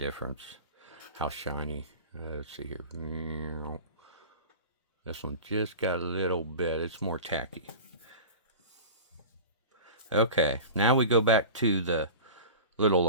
how shiny. Let's see here. This one just got a little bit, it's more tacky. Okay, now we go back to the little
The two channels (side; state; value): both; inverted; correlation -0.34